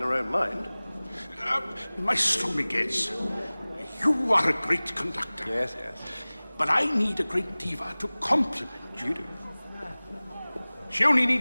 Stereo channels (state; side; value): inverted; both; correlation -0.99